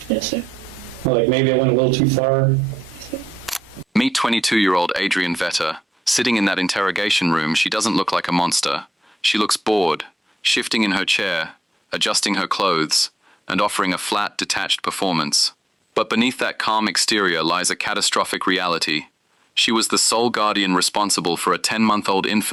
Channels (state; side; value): normal; both; correlation 0.86